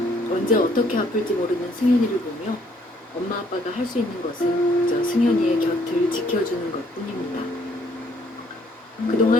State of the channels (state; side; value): normal; both; correlation 0.64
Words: 언제 어떻게 아플지 모르는 승현이를 보며 엄마 아빠가 할 수 있는 것은 그저 승현이의 곁을 지켜주는 것뿐입니다.